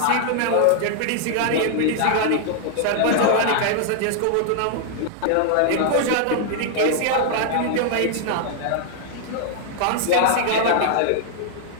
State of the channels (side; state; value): both; different; correlation 0.00